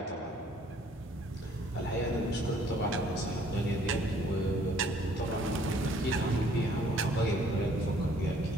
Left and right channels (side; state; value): both; normal; correlation 0.60